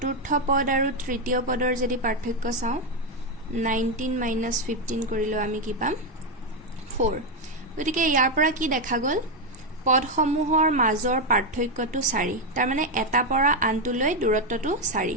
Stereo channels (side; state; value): both; normal; correlation 0.05